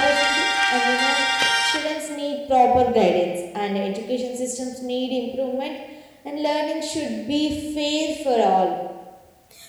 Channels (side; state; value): both; identical; correlation 1.00